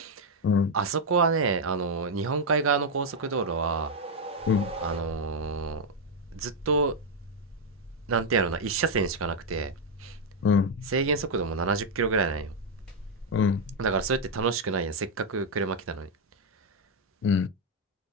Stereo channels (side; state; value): both; normal; correlation 0.02